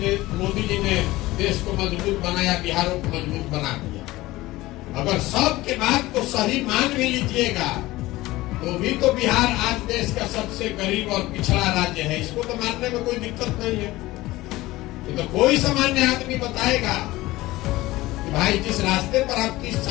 मोदी जी ने देश को मजबूत बनाया, बिहारों को मजबूत बना दिया। अगर सबके बात को सही मान भी लीजिएगा, तो भी तो बिहार आज देश का सबसे गरीब और पिछड़ा राज्य है। इसको तो मानने में कोई दिक्कत नहीं है। तो कोई सामान्य आदमी बताएगा कि भाई जिस रास्ते पर आप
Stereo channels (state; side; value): quieter; right; 18.4 dB